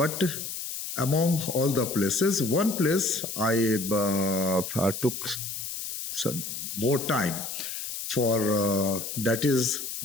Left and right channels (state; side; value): noise; left; hiss, 6 dB below the sound